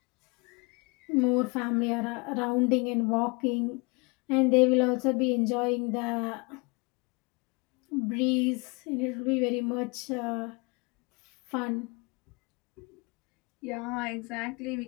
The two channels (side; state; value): right; quieter; 29.1 dB